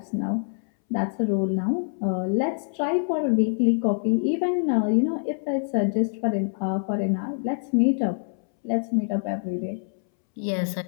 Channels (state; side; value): silent; right; 62 dB below the other